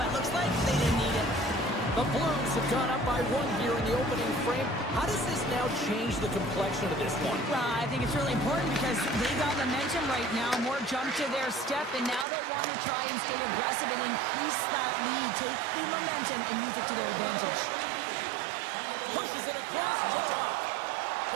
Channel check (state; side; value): drops out; left; at 12.2 s